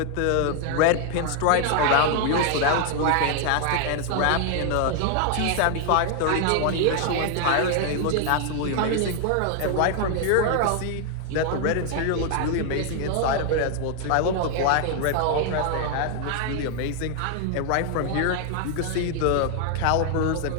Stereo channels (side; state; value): both; different; correlation 0.00